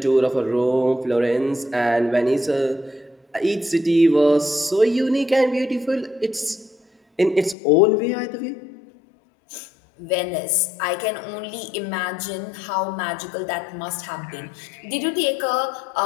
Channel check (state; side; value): drops out; right; at 7.6 s